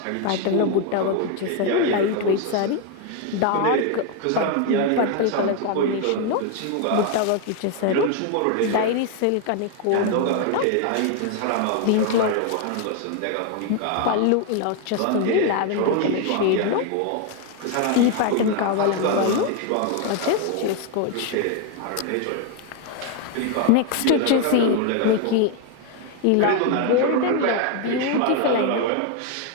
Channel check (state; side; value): different; both; correlation 0.01